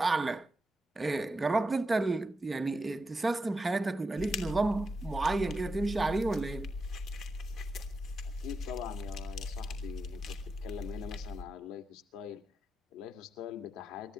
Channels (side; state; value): both; normal; correlation 0.88